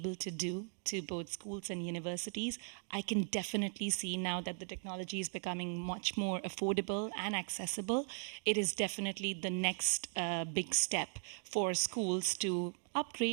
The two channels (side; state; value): left; silent; 52 dB below the other